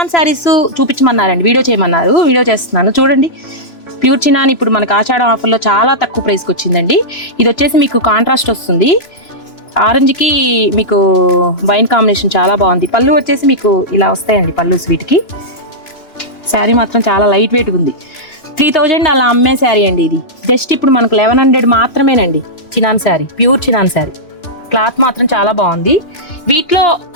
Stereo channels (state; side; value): late; right; 3.0 ms